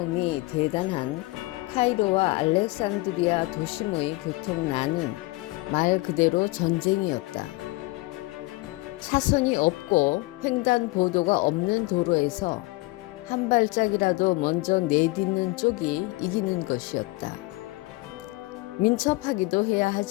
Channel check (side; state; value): right; quieter; 22.1 dB